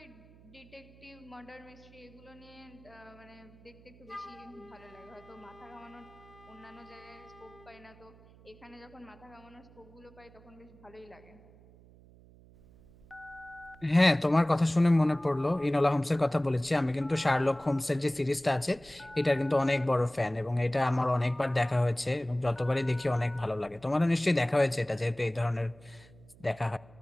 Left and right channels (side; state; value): right; noise; hum, 24 dB below the sound